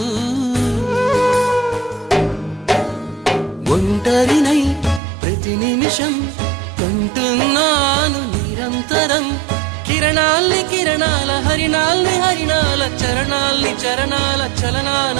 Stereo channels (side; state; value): left; drops out; at 5.0 s